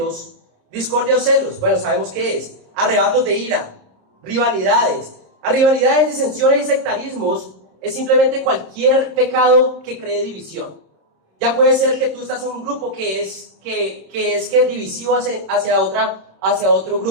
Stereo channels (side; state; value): left; late; 27 ms